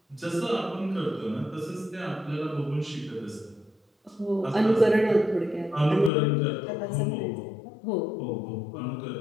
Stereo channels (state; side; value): drops out; right; at 6.1 s